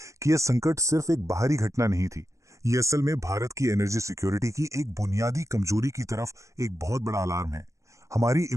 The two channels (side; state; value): left; late; 0.15 ms